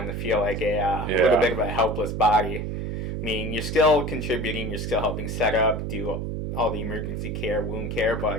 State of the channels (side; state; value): right; noise; hum, 3 dB below the sound